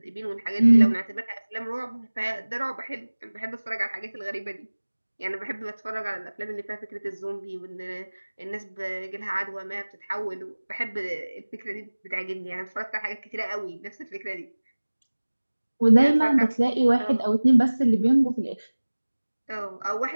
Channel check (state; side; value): inverted; both; correlation -1.00